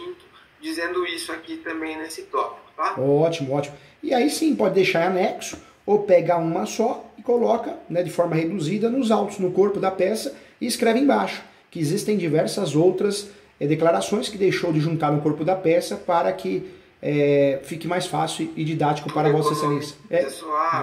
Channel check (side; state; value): both; identical; correlation 1.00